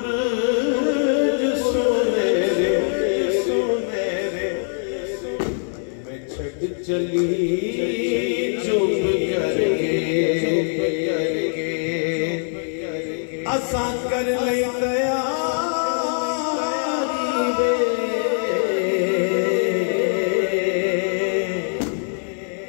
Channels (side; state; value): right; silent; digital silence